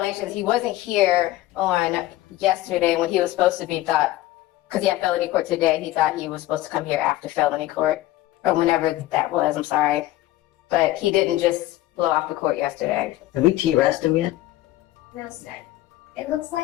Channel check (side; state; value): right; quieter; 16.0 dB